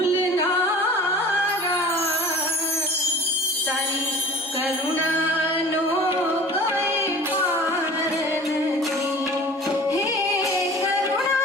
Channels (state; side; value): normal; both; correlation 0.42